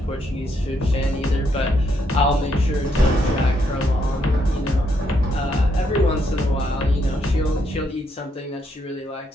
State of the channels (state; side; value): normal; both; correlation 0.76